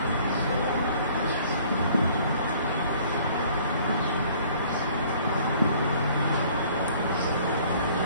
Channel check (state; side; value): inverted; both; correlation -0.56